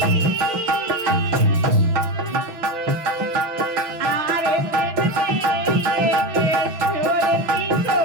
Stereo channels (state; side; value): late; left; 6.0 ms